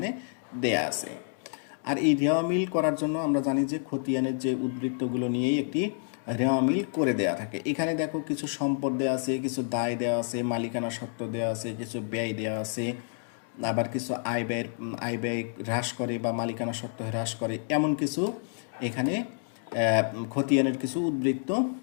দেয়া আছে। আর এই রেওয়া মিল করার জন্য আমরা জানি যে খতিয়ানের যে উদ্বৃত্তগুলো নিয়েই একটি রেওয়া মিল করে দেয়া থাকে। এখানে দেখো কিছু সম্পদ দেওয়া আছে, কিছু দায় দেওয়া আছে, মালিকানা সত্ত্ব দেওয়া আছে, কিছু ব্যয় দেওয়া আছে, আবার কিছু আয় ব্যয় হ্রাস করে বা মালিকানা সত্ত্ব হ্রাস করে, এমন কিছু এখানে খতিয়ানের কিছু উদ্বৃত্ত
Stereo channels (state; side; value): silent; right; digital silence